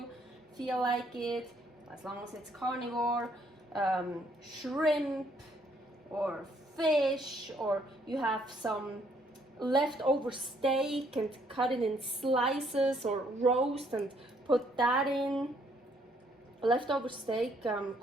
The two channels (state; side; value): normal; both; correlation 0.68